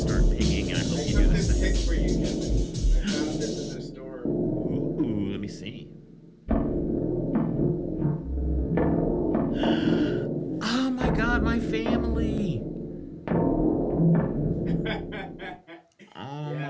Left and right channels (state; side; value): identical; both; correlation 1.00